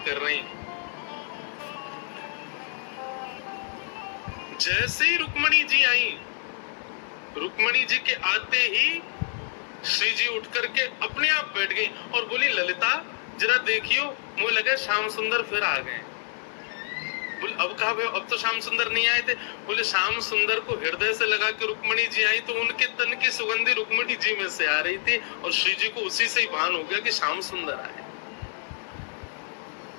रहे हैं। जैसे ही रुक्मणी जी आई, रुक्मणी जी के आते ही श्री जी उठ करके अपने आप बैठ गई और बोली, ललिता जरा देखियो, मुझे लगा श्याम सुंदर फिर आ गए। बोले अब कहा भाई, अब तो श्याम सुंदर नहीं आए थे। बोले श्याम सुंदर को हृदय से लगा के रुक्मणी जी आई तो उनके तन की सुगंधी रुक्मणी जी में से आ रही थी और श्री जी को उसी से ही भान हो गया कि श्याम सुंदर आए।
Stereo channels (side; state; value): right; silent; 60 dB below the other